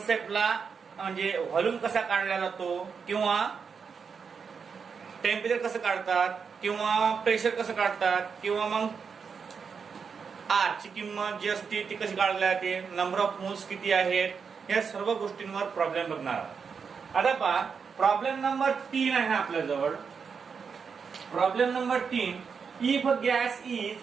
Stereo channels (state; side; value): quieter; left; 6.0 dB